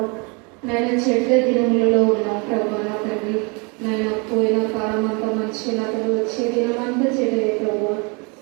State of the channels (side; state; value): left; quieter; 31.2 dB